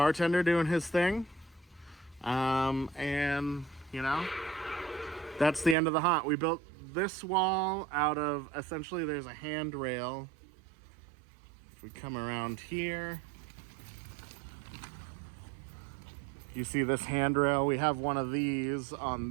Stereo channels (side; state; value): left; drops out; at 5.8 s